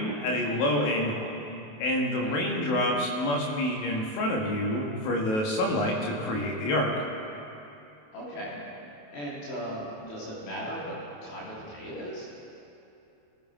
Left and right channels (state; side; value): late; right; 28 ms